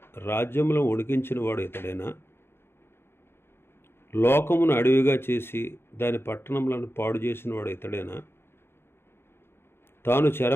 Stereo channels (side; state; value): right; late; 0.11 ms